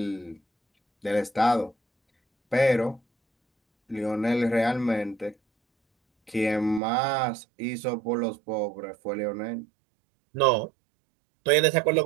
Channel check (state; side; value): drops out; left; at 6.8 s